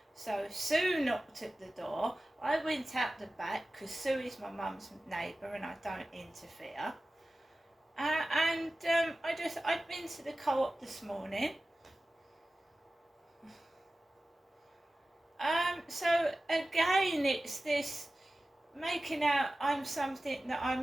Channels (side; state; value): both; normal; correlation 0.96